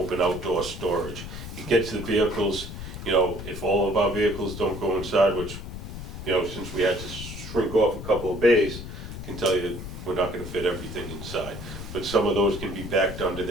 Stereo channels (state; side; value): noise; left; rumble, 9 dB below the sound